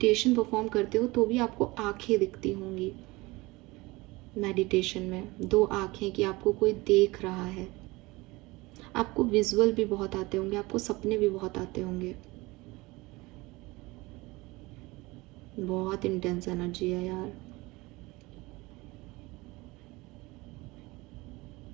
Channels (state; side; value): quieter; left; 22.2 dB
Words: परफॉर्म करते हो तो भी आपको आंखें दिखती होंगी मेडिटेशन में, 2 आंखें कि आपको कोई देख रहा है। आपको विजुअल भी बहुत आते होंगे, आपको सपने भी बहुत आते होंगे। बहुत इंटेंस एनर्जी है यार।